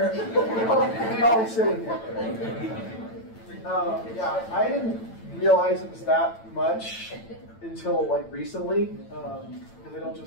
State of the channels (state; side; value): late; right; 9.0 ms